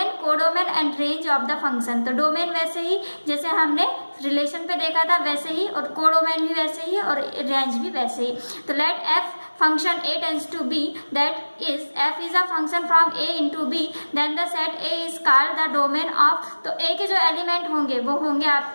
codomain and range of the function, तो डोमेन वैसे ही जैसे हमने रिलेशन पे देखा था वैसे ही, और कोडोमेन भी वैसे ही और रेंज भी वैसे ही। तो let F function a tends to b, that is f is a function from a into b, then the set a is called the domain of, तो a के जो एलिमेंट होंगे वो होंगे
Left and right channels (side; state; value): both; inverted; correlation -1.00